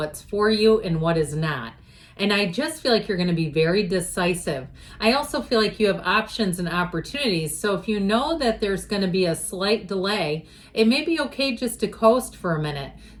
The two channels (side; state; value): both; identical; correlation 1.00